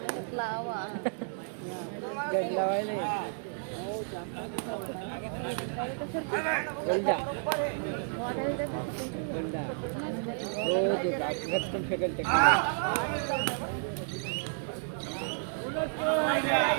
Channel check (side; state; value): left; silent; 57 dB below the other